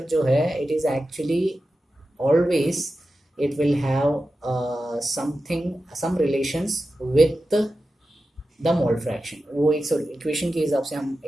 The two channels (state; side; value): normal; both; correlation 0.92